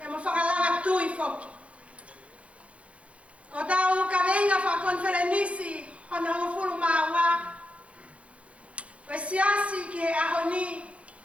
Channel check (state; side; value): late; left; 0.063 ms